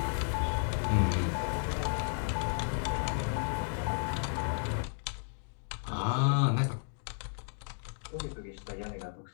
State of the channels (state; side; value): silent; right; digital silence